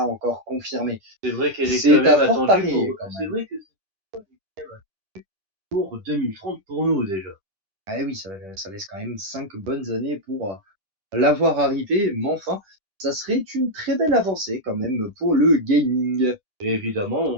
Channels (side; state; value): left; late; 10 ms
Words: encore confirmée. C'est vrai qu'elle est quand C'est même à fort attendue parier pour. quand C'est même. vrai que c'est pour 2030 pour nous déjà. Ah oui, ça laisse quand même 5 bonnes années pour l'avoir arrivé, mais enfin, ça serait une très belle avancée quand même pour le gaming. Et évidemment, on